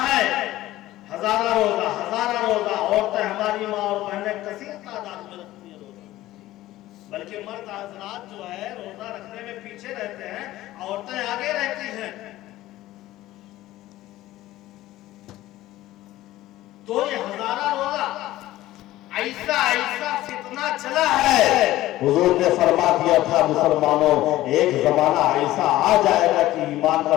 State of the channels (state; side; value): quieter; right; 15.8 dB